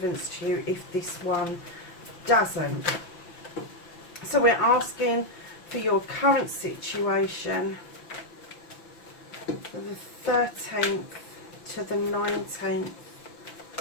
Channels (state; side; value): late; right; 5.9 ms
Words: to you if this one doesn't. So we're asking for your current situation for the 13th to the 19th,